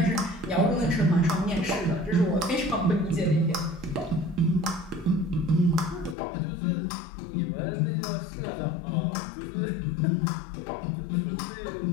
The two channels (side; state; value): right; drops out; at 6.2 s